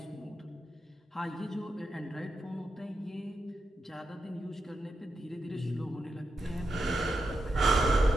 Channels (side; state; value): both; normal; correlation 0.86